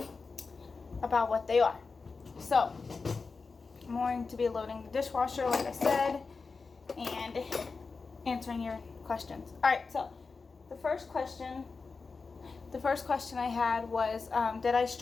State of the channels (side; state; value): right; quieter; 4.5 dB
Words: what they are. So I'm going to be loading the dishwasher, like I said, and answering your questions. All right, so the first question I had was, did I